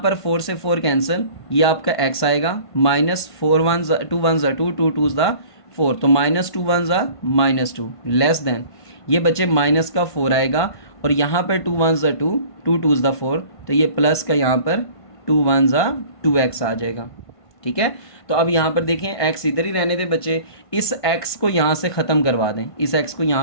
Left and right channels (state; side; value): late; right; 1.5 ms